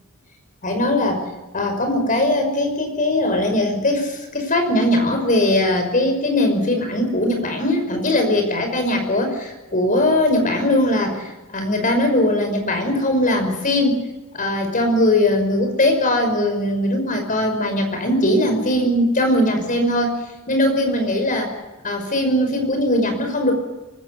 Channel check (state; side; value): normal; both; correlation 0.20